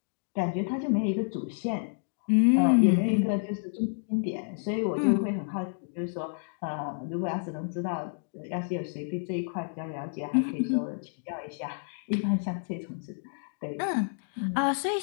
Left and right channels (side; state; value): right; silent; digital silence